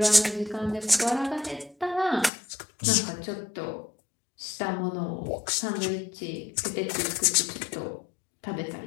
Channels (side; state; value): right; drops out; at 2.3 s